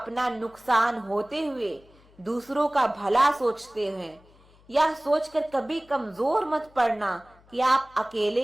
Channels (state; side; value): noise; left; hum, 28 dB below the sound